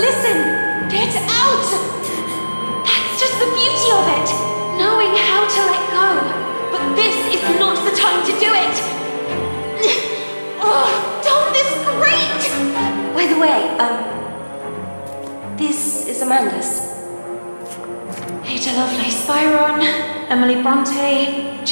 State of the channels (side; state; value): both; inverted; correlation -1.00